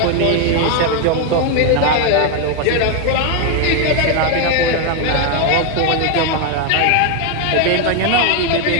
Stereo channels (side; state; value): both; different; correlation 0.01